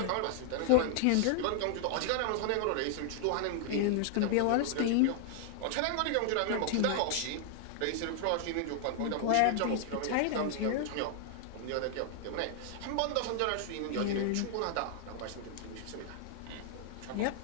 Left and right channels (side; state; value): both; different; correlation 0.00